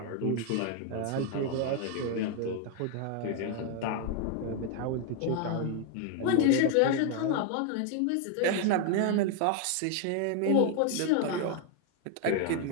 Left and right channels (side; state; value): both; different; correlation 0.01